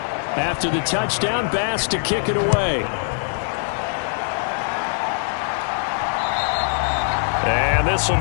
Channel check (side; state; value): right; silent; digital silence